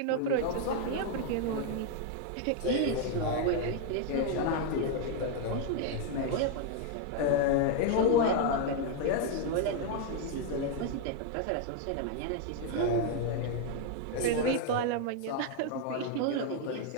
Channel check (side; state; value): both; different; correlation 0.00